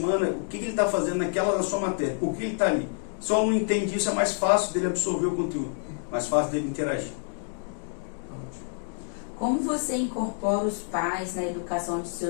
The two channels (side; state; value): right; silent; digital silence